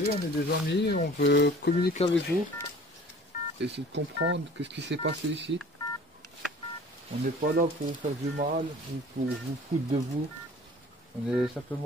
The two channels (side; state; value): both; normal; correlation 0.47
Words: on est des amis, on veut communiquer avec vous, essayer de comprendre qu'est-ce qui s'est passé ici. On n'est pas là pour vous faire du mal ou pour vous foutre de vous. On est